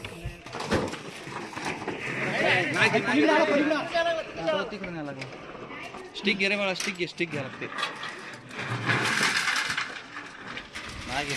स्टिक घे रे मला, स्टिक घ्या लागते.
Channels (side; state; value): both; identical; correlation 1.00